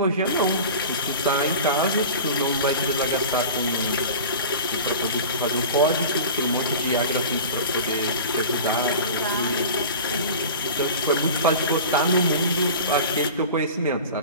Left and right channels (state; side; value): inverted; both; correlation -0.35